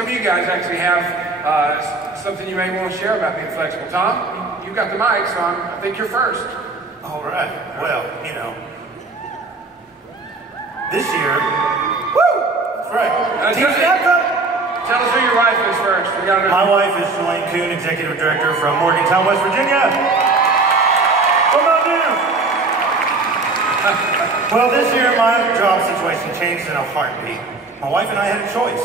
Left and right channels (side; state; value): left; quieter; 3.6 dB